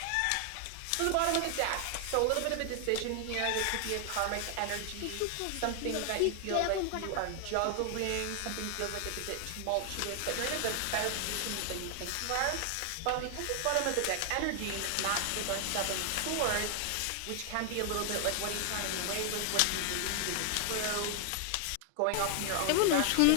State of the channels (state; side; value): different; both; correlation 0.00